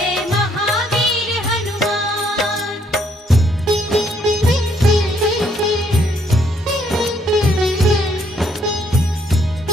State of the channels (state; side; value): normal; both; correlation 0.69